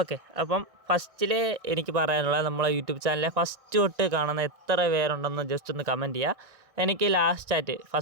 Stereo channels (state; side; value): late; left; 1.6 ms